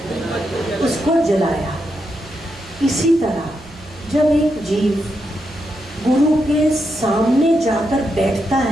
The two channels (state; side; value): noise; right; hum, 23 dB below the sound